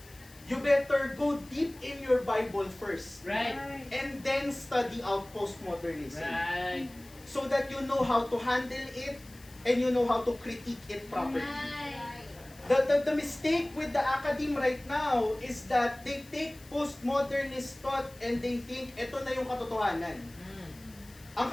you better go deep in your Bible first. Right. And then study out postmodernism. Right. So that you know how to handle it and you know how to critique it properly. The mistake with the academe right now is that they take postmodernist thought and they think ito na yung katotohanan. Ang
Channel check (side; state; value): left; noise; hiss, 23 dB below the sound